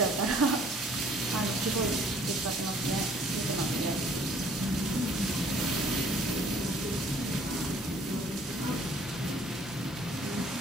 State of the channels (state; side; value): normal; both; correlation 0.57